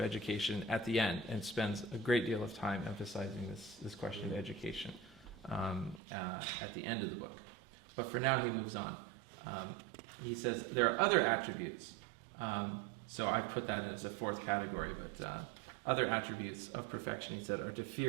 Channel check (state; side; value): drops out; left; at 6.0 s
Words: at the end and spends a great deal of time emphasizing this question of education at the end of the book. But for now, he moves on. He says there are other attributes. So I put that in as a 4th category, but other attributes of perfection, he said, are to